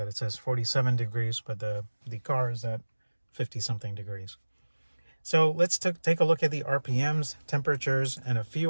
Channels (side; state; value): both; inverted; correlation -1.00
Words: it says 47 degrees, but the car is at 50 something degrees. So let's take a look at the RPMs, temperatures, and a